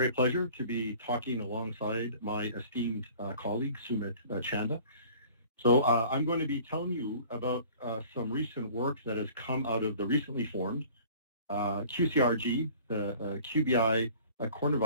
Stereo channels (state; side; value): inverted; both; correlation -0.49